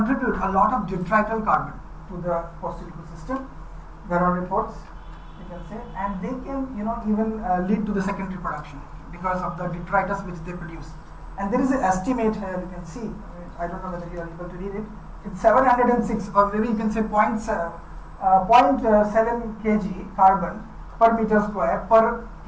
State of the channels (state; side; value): identical; both; correlation 1.00